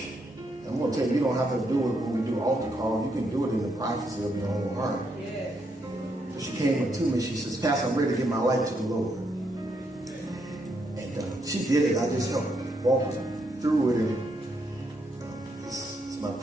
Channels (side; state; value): both; normal; correlation 0.77